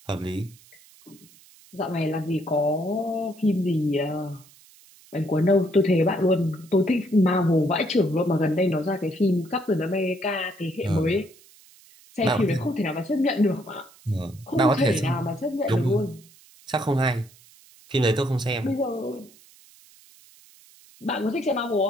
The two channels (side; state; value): right; noise; hiss, 26 dB below the sound